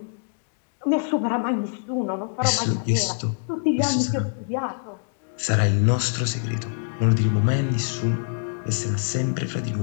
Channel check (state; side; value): silent; right; digital silence